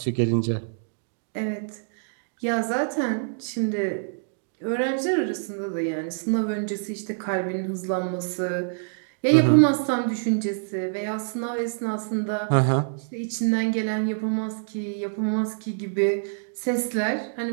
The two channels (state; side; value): silent; left; digital silence